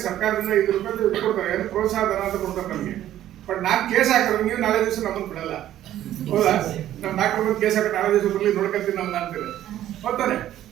ಸರ್ಕಾರದಿಂದ ₹5 ಕೊಡ್ತಾರೆ, ಏನು ಪ್ರೋತ್ಸಾಹ ಧನ ಅಂತ ಕೊಡ್ತಾರೆ ನಮಗೆ. ಬಟ್ ನಾನು ಕೇಸ್ ಹಾಕಿದ್ರೆ ನೀವು ನಾಳೆ ದಿವಸ ನಮ್ಮನ್ನು ಬಿಡಲ್ಲ, ಹೌದಾ? ನಮ್ಮ ಡಾಕ್ಟರ್ ಬಂದು ಕೇಸ್ ಹಾಕಿ ನಾಳೆ ದಿವಸ ಬರಲಿ, ನೋಡ್ಕೊಳ್ತೀನಿ ನಮ್ಗೆ ಅಂತೀವಿ, ಹೋಗ್ತಾನೆ.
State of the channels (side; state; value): left; quieter; 12.5 dB